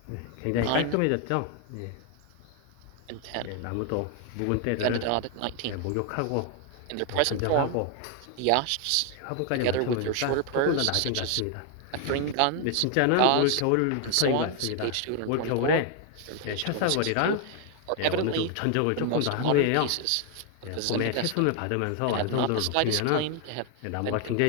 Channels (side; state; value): both; different; correlation 0.00